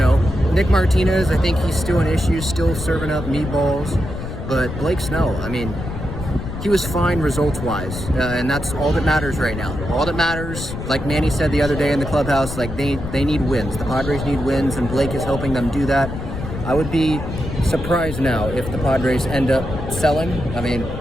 Nick Martinez, I think he's still an issue, still serving up meatballs. But Blake Snell, I mean, he was fine results-wise, and that's all that matters right now. All that matters, like Manny said the other day in the clubhouse, like they need wins. The Padres need wins, and Blake is helping them do that. I would be surprised now if the Padres end up selling. I mean,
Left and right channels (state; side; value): noise; left; rumble, 7 dB below the sound